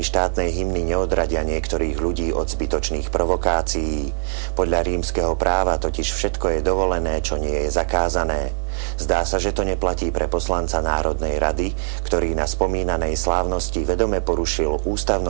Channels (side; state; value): left; silent; digital silence